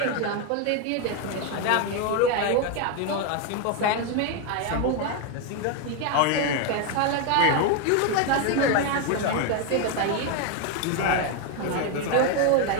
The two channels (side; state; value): both; different; correlation 0.02